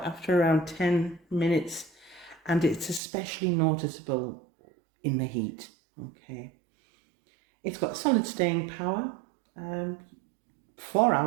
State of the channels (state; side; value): drops out; left; at 3.0 s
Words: after around 10 minutes, and it's especially noticeable in the heat. Okay, it's got solid staying power, 4